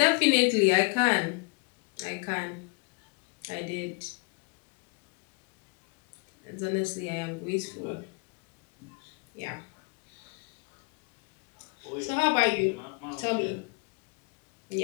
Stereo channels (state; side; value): quieter; right; 32.2 dB